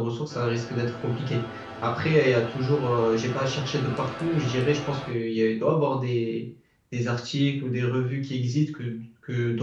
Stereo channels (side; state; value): both; identical; correlation 1.00